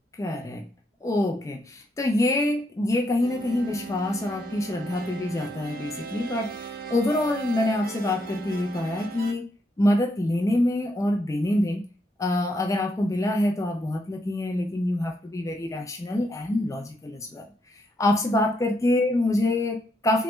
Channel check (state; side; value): normal; both; correlation 0.77